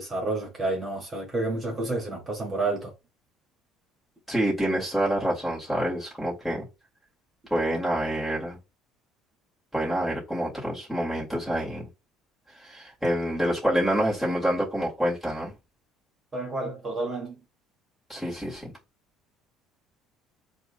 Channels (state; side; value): normal; both; correlation 0.82